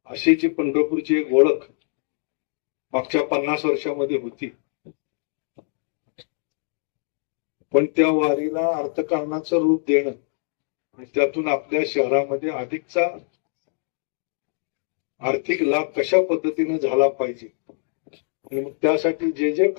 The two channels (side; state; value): right; silent; digital silence